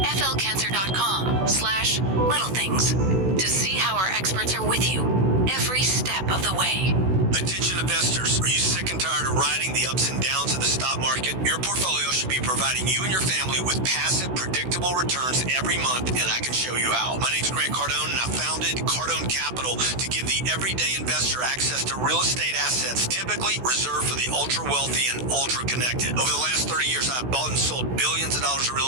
to see how our experts are with you every step of the way. Attention investors, are you sick and tired of riding the ups and downs of the stock market? Your portfolio should be providing you and your family with passive, predictable returns every month, and I can show you how. My name's Grant Cardone, and I founded Cardone Capital to give the everyday investor access to real estate assets typically reserved for the ultra-wealthy and ultra-connected. Over the last 30 years, I've bought and sold billions of dollars of real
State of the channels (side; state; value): left; late; 16 ms